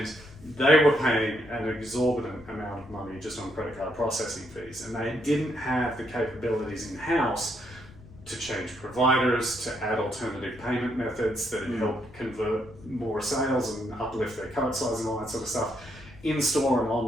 they were paying an exorbitant amount of money just on credit card processing fees. And they didn't have the capabilities in-house to change providers, to add alternative payment methods that help convert more sales and uplift their cart size and all that sort of stuff. In-store and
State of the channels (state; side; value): noise; left; rumble, 21 dB below the sound